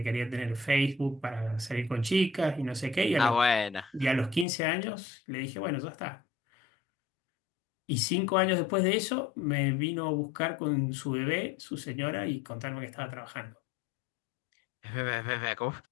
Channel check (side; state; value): right; drops out; at 4.5 s